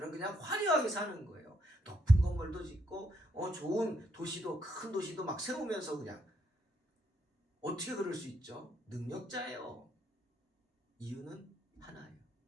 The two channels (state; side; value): normal; both; correlation 0.75